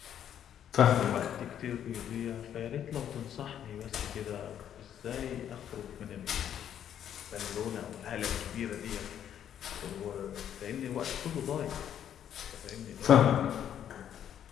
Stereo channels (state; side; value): quieter; right; 9.8 dB